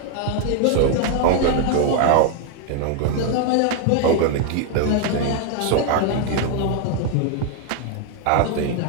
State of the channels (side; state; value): both; different; correlation 0.01